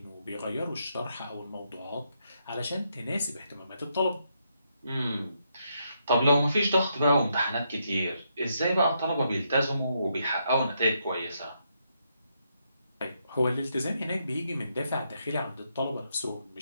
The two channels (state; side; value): inverted; both; correlation -0.78